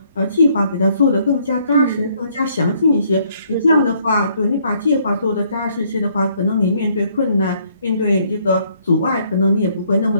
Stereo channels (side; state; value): both; inverted; correlation -0.67